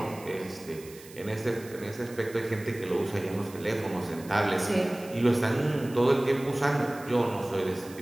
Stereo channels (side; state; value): right; noise; hiss, 19 dB below the sound